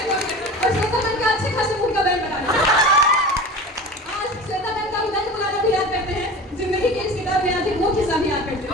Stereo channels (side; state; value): both; normal; correlation 0.34